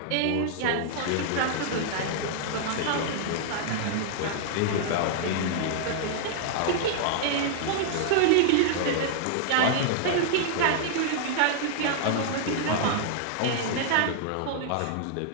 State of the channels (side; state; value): both; different; correlation -0.01